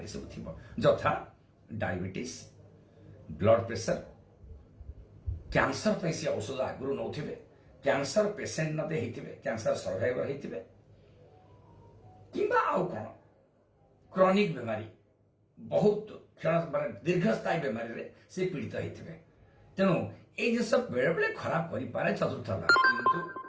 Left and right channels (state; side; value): identical; both; correlation 1.00